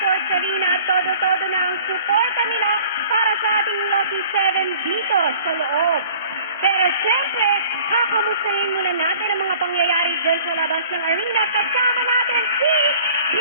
Arena at todo-todo na ang suporta nila para sa ating Lucky 7 dito sa loob. Pero siyempre, kakamustahin muna natin ang mga pangyayari dyan sa labas ng arena. Kasama natin si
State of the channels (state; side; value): inverted; both; correlation -0.50